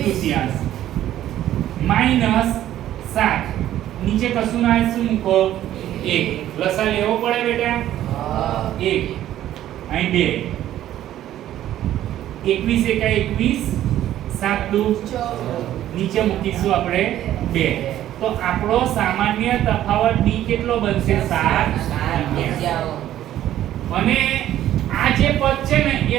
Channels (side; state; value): left; quieter; 12.5 dB